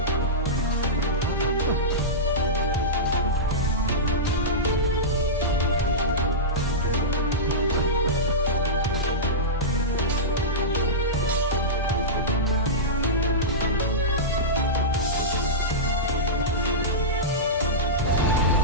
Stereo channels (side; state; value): both; normal; correlation -0.15